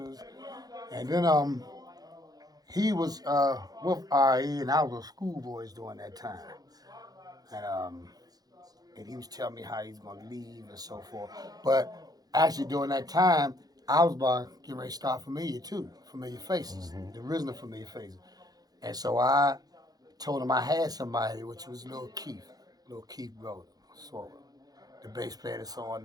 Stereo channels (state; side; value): late; left; 0.19 ms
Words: And then, he was, with RE, and I was with Schoolboys during that time. And, and he was telling me how he's going to leave and so forth. But actually, during that time, I was about to get ready to start Familiar too, Familiar Faces, the original Familiar Faces. And so I told him I had somebody, which was Little Keith Golden, sort of. The bass player that's